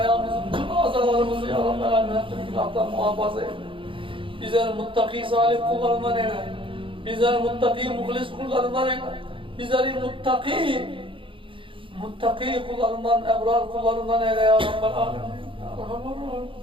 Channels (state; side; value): late; left; 0.25 ms